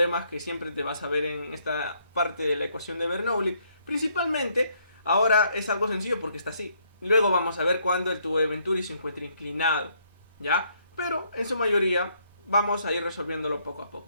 que siempre te vas a ver en esta parte de la ecuación de Bernoulli. Principalmente, ahora es algo sencillo porque está así. Luego vamos a ver cuando el tubo de Venturi se encuentre inclinado, ¿ya? Pero en su mayoría vamos a ir resolviéndolo poco a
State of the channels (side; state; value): both; inverted; correlation -0.70